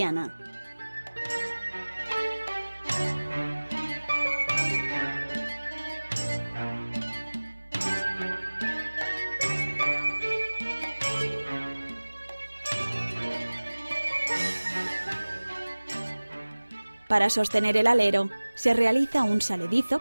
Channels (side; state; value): both; inverted; correlation -1.00